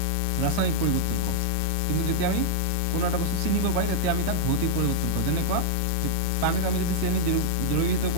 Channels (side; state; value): both; different; correlation -0.02